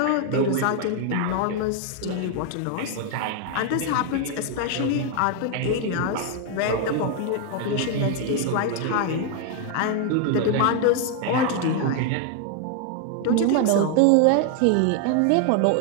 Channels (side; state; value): both; different; correlation 0.00